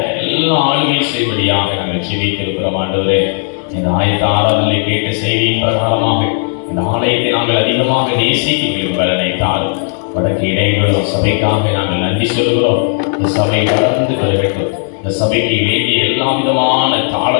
எல்லாம் ஆளுகை செய்வடியாக நாங்கள் ஜெபித்திருக்கிறோம். ஆண்டவரே, இந்த ஆயத்த ஆராதனை கேட்ட செய்தியின் பிரகாரமாக இந்த ஆலயத்தை நாங்கள் அதிகமாக நேசிக்க பலனை தாரும். வடக்கு இடைவெளியும் சபைக்காக நாங்கள் நன்றி சொல்கிறோம். இந்த சபை வளர்ந்து பெருகட்டும். இந்த சபைக்கு வேண்டிய எல்லா விதமான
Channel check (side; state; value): right; silent; 57 dB below the other